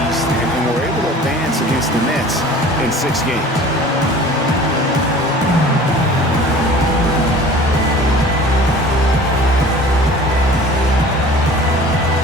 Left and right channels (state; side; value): normal; both; correlation 0.44